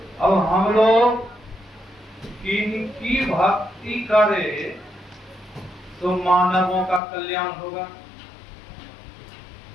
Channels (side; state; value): right; drops out; at 7.0 s